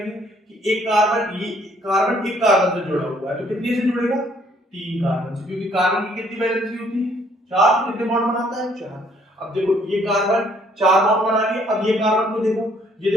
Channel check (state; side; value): normal; both; correlation 0.64